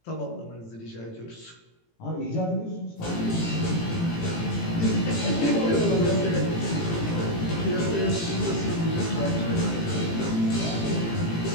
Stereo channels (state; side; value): late; right; 18 ms